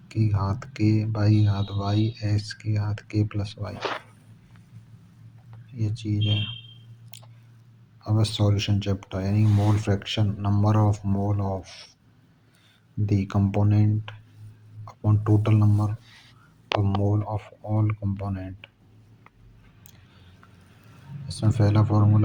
की घात के बाई घात वाई एस की घात के प्लस वाई, ये चीज़ है। अब सॉल्यूशन चैप्टर, यानी mole fraction, number of mole of the component upon total number of mole of all component. इसमें पहला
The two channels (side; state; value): both; identical; correlation 1.00